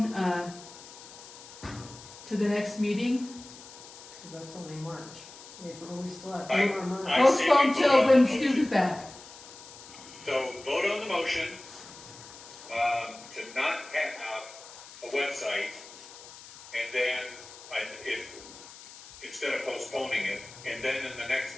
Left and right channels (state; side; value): noise; left; hiss, 17 dB below the sound